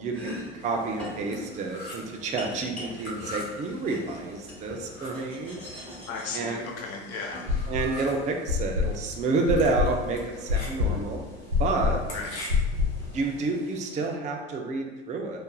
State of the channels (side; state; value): both; normal; correlation 0.31